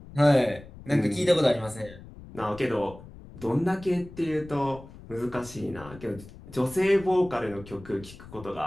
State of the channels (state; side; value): noise; left; rumble, 18 dB below the sound